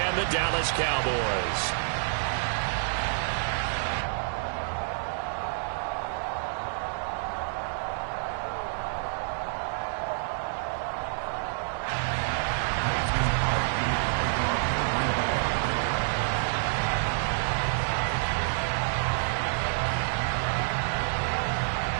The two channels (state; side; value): silent; left; 56 dB below the other